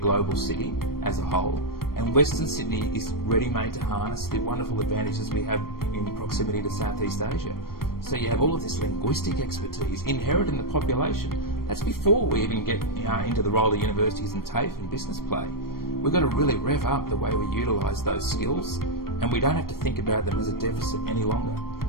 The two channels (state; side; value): late; right; 0.93 ms